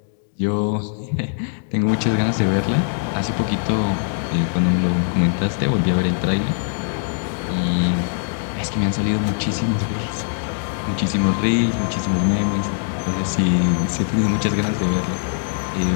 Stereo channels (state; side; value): silent; right; digital silence